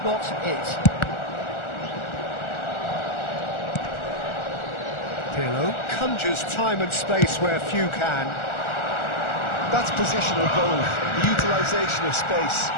not it. Pirlo conjures time and space where few can. That's positional goal, the utilisation of space.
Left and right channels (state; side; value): late; right; 1.4 ms